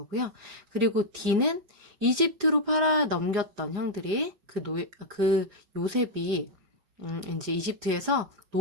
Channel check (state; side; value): late; left; 4.9 ms